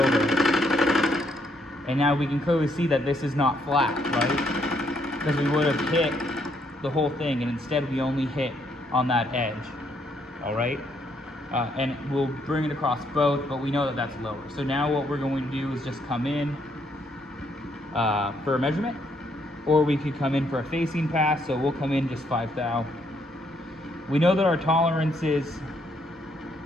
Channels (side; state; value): both; normal; correlation 0.72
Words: And now we can clearly see that this is not flat, right? Because we would have hit the whole thing, and instead we only hit on that edge, all right? And we'll bring it across both, but we know that that's lower. So now what we're going to do is just come in for a measurement, or we could come in for a facing pass, so we'll come in just 5 thou. We know that our tolerances